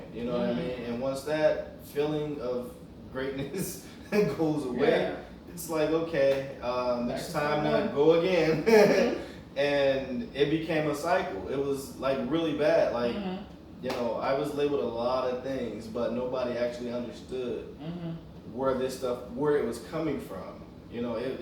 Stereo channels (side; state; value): both; identical; correlation 1.00